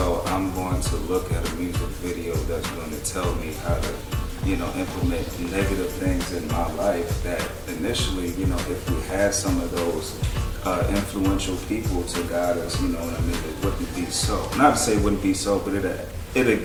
I'm going to look at a music video that's going to tell me how to, implement negative things in my life that initially, if we had some of those influential people to guide us, it wouldn't be so. Not to say it wouldn't be so, but it'd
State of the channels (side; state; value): both; identical; correlation 1.00